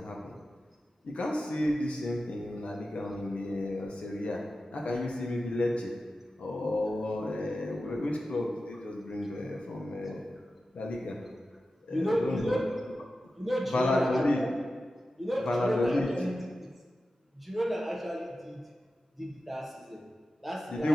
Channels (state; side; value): normal; both; correlation 0.93